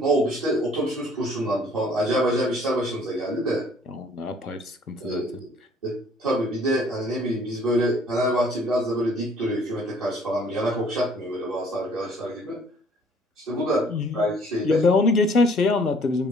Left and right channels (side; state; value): both; normal; correlation 0.58